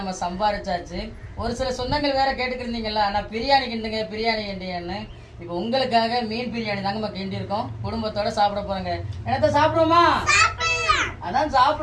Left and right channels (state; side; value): identical; both; correlation 1.00